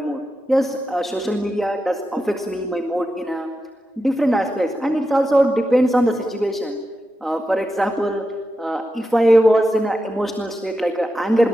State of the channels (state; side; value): normal; both; correlation 0.89